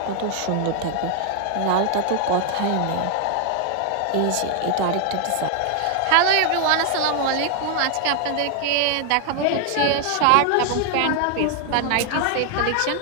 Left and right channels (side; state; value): both; different; correlation 0.00